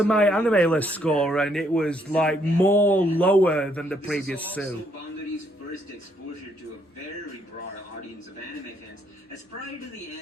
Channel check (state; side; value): normal; both; correlation 0.71